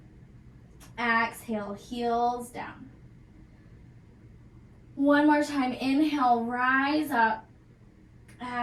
Exhale, heels down. One more time, inhale, rise up.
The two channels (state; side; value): identical; both; correlation 1.00